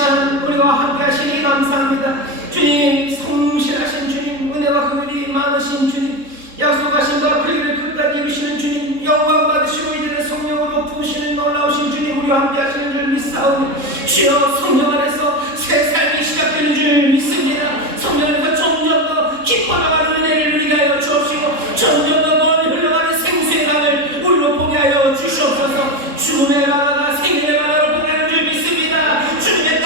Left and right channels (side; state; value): left; late; 3.7 ms